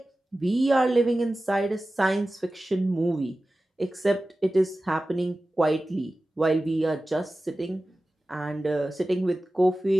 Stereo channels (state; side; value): normal; both; correlation 0.95